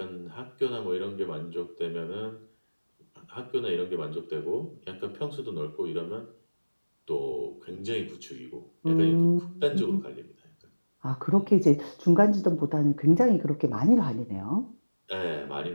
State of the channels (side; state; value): both; inverted; correlation -1.00